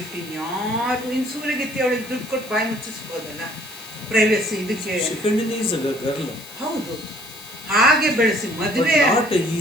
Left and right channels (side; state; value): left; noise; hiss, 17 dB below the sound